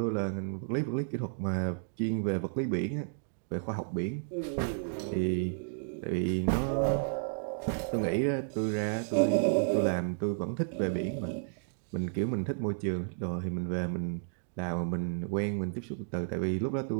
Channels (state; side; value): silent; left; digital silence